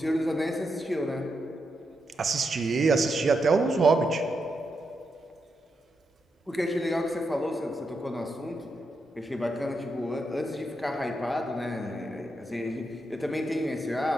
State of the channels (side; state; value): both; normal; correlation 0.84